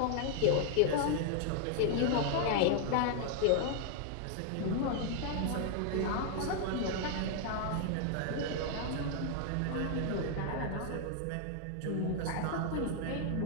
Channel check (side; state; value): both; different; correlation 0.00